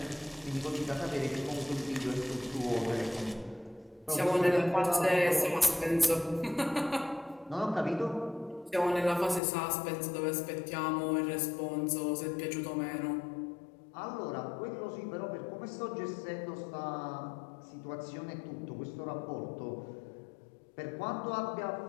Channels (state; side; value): drops out; right; at 9.4 s